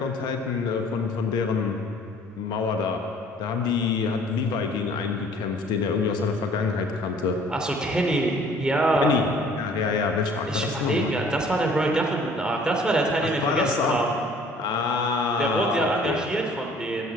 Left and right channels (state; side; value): normal; both; correlation 0.54